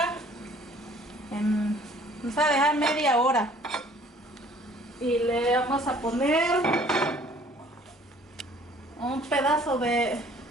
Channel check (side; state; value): both; normal; correlation 0.55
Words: Vamos a dejar media hora. Y le vamos a poner un pedazo de